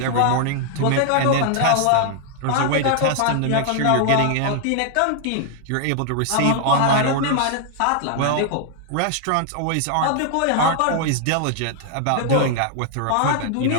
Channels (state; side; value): different; both; correlation 0.00